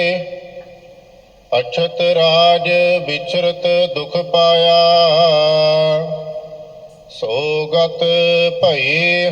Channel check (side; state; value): both; identical; correlation 1.00